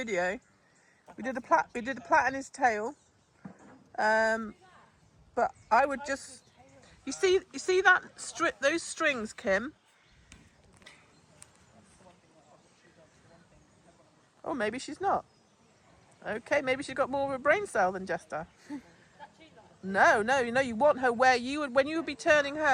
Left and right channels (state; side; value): identical; both; correlation 1.00